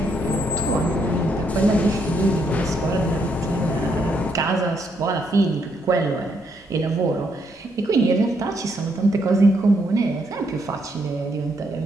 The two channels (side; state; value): both; normal; correlation 0.75